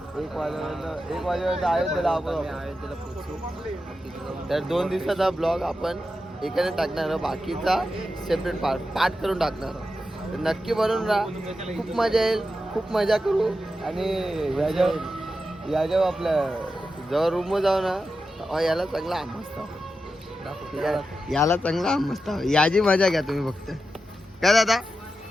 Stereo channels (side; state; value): both; normal; correlation 0.90